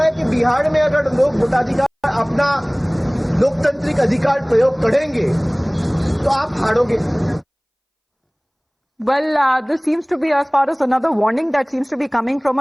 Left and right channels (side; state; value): both; identical; correlation 1.00